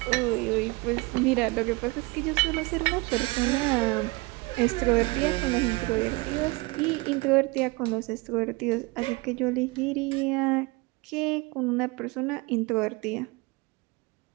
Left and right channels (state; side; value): quieter; left; 25.3 dB